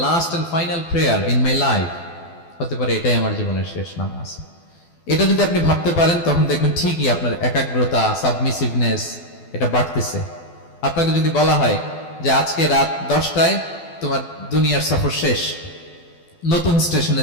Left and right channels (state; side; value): late; right; 12 ms